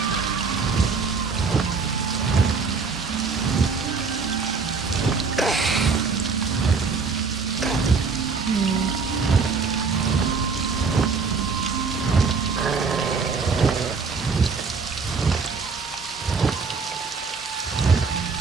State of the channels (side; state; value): left; quieter; 4.9 dB